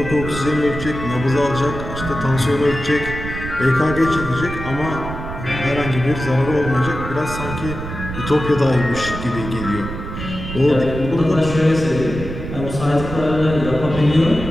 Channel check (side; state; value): right; noise; rumble, 8 dB below the sound